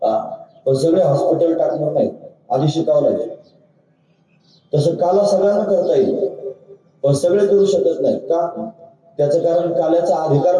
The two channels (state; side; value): identical; both; correlation 1.00